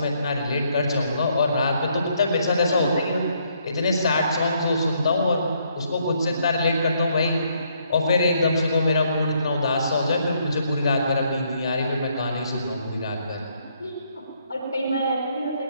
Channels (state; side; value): inverted; both; correlation -0.71